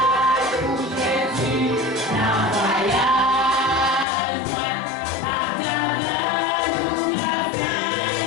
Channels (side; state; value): right; drops out; at 4.0 s